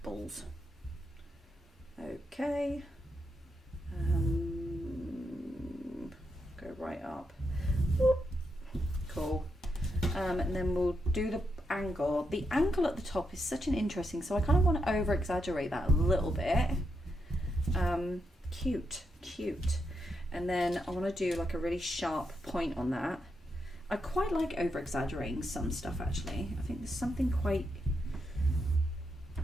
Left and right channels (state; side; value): normal; both; correlation 0.83